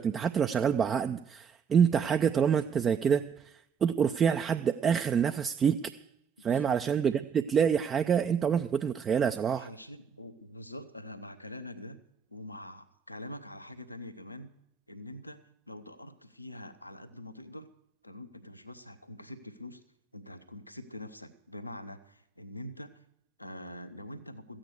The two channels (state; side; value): quieter; left; 6.9 dB